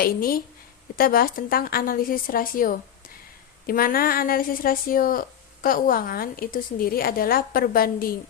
ini kita bahas tentang analisis rasio. Di mana analisis rasio keuangan itu sendiri adalah perbandingan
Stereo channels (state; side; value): quieter; right; 9.4 dB